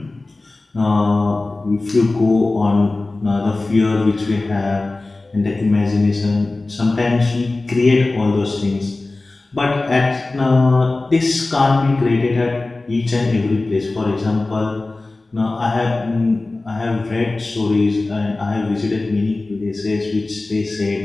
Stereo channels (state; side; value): quieter; right; 3.2 dB